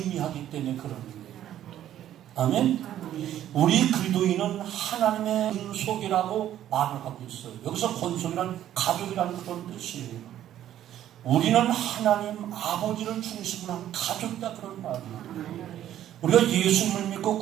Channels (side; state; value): left; quieter; 11.8 dB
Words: 때문에 그런 거예요. 아멘? 우리 그리스도인은 하나님의 권속이라고 말을 하고 있어요. 여기서 권속이란 가족이라는 그런 뜻이에요. 우리는 하나님 아버지를 중심으로 한 가족이다, 그런 말이에요. 우리가 예수님을 믿고